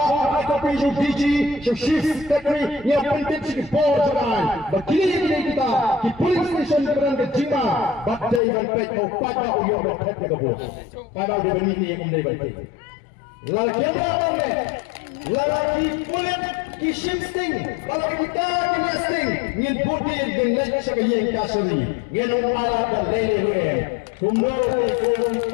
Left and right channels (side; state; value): right; drops out; at 8.4 s